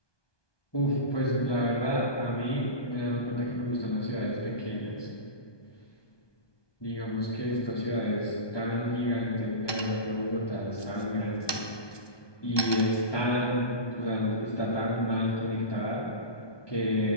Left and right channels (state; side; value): late; right; 1.2 ms